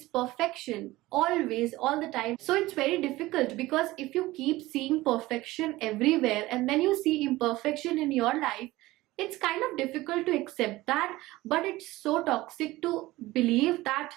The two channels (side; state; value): left; quieter; 18.5 dB